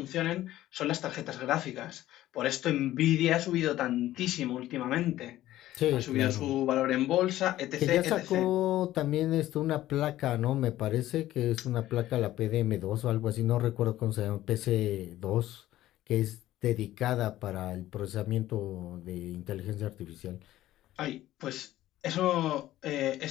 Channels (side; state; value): right; quieter; 14.5 dB